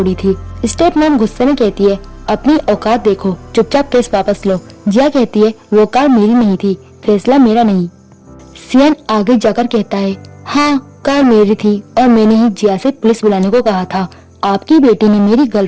थी। स्टेप मॉम गुस्से में कहती है, अपनी औकात देखो, चुपचाप केस वापस लो। जिया कहती है, वो कार मेरी नहीं थी, फैसला मेरा नहीं। सियन आगे जाकर कहता है, हाँ कार मेरी थी और मैंने ही जिया से पुलिस बुलाने को कहा था। आपकी बेटी ने मेरी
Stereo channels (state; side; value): identical; both; correlation 1.00